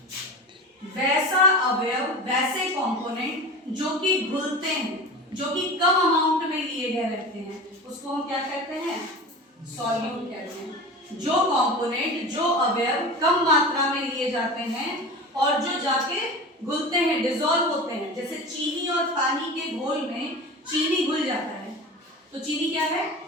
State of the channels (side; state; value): both; normal; correlation 0.32